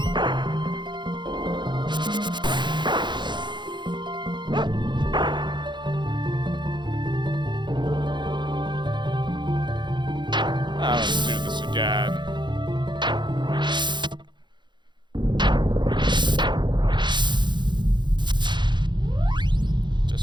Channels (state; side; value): late; left; 0.22 ms